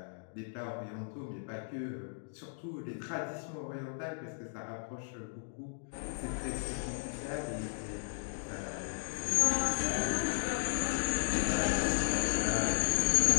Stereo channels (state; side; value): silent; right; digital silence